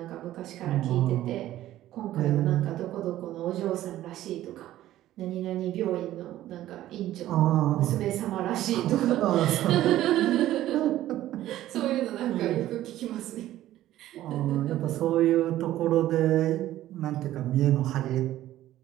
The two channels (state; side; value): quieter; left; 13.9 dB